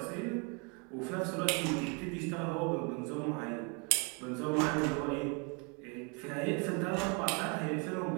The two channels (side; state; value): left; quieter; 34.1 dB